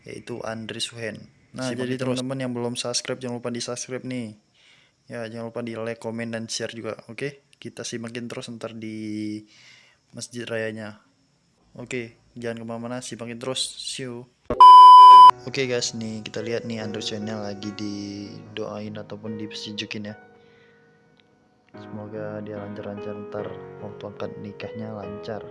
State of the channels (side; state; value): both; identical; correlation 1.00